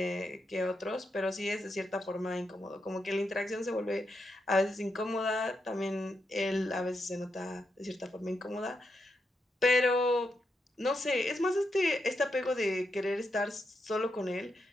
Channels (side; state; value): both; normal; correlation 0.84